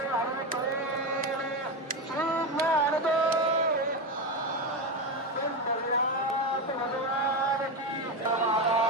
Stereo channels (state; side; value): normal; both; correlation 0.14